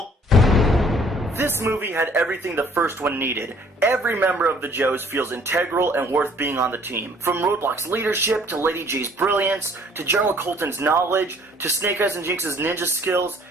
This movie had everything the first one needed. Every member of the Joes feels integral and worth being on the team. From Roadblock's leadership, to Lady J's brilliance, to General Colton's knowledge, to Snake Eyes and Jinx's ninja skills,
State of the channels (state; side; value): normal; both; correlation 0.58